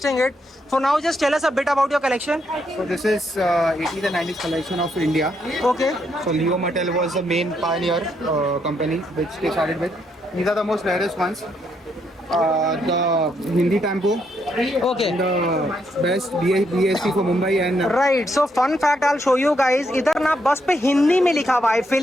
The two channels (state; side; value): normal; both; correlation 0.76